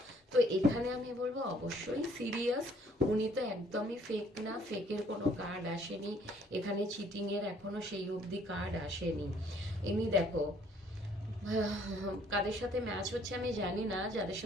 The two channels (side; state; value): both; normal; correlation 0.62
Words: তো এখানে আমি বলবো অবশ্যই সিরিয়াস। উনি তো একদমই ফেক না, ফেকের কোনো কার্ড আসেনি এখানে, চিটিং এর এখনো সেই অবধি কার্ড আসেনি। এমনি দেখো, কাদের সাথে ম্যাচ হচ্ছে আমি জানি না, যাদের